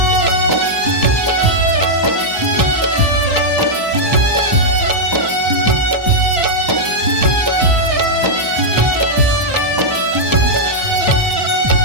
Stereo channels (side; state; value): left; late; 1.1 ms